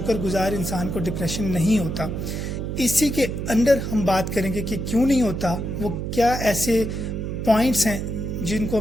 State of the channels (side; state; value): right; noise; hum, 4 dB below the sound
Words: गुजार इंसान को डिप्रेशन नहीं होता। इसी के अंदर हम बात करेंगे कि क्यों नहीं होता, वो क्या ऐसे पॉइंट्स हैं जिनको